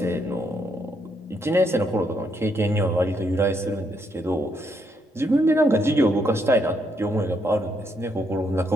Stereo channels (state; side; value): normal; both; correlation 0.75